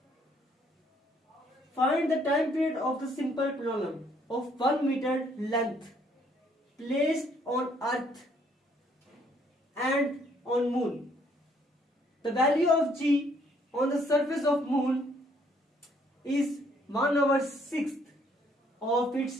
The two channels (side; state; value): both; normal; correlation 0.66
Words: find the time period of the simple polynomial of 1 metre length placed on earth and on moon. The value of g on the surface of moon is 1/6 of